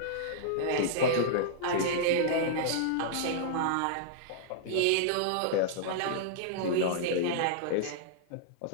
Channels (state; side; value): different; both; correlation -0.02